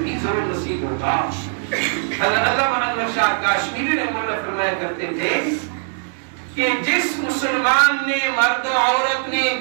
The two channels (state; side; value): silent; left; 65 dB below the other